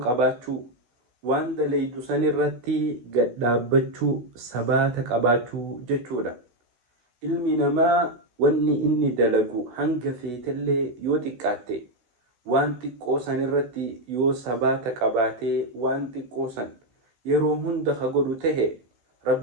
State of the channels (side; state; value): left; late; 16 ms